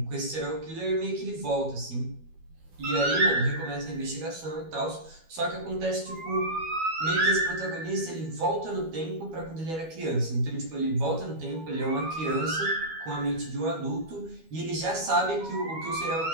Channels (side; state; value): left; late; 12 ms